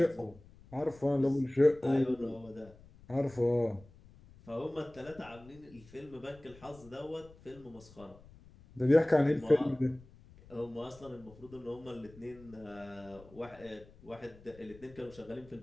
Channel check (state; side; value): noise; left; rumble, 22 dB below the sound